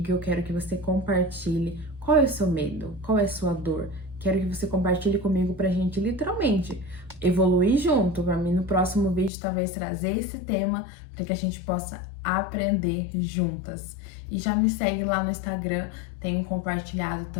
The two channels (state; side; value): drops out; right; at 9.3 s